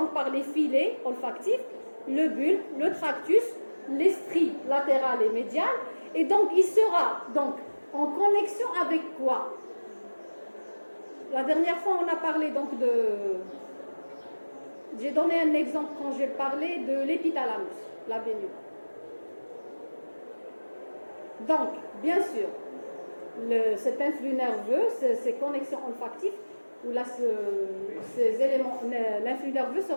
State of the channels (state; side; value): inverted; both; correlation -1.00